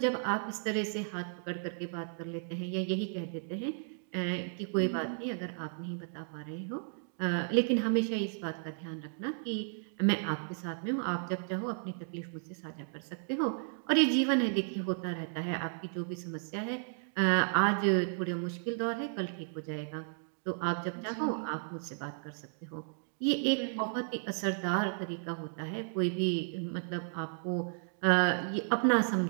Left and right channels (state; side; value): silent; left; digital silence